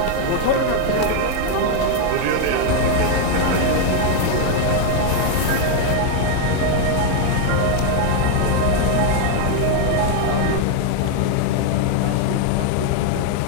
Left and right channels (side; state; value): both; different; correlation 0.01